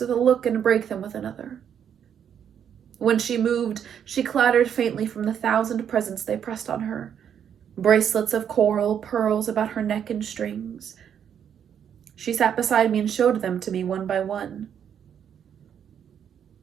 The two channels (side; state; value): left; quieter; 8.6 dB